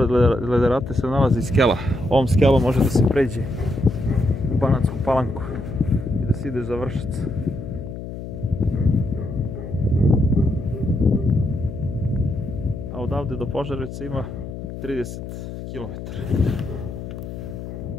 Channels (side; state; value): left; noise; hum, 9 dB below the sound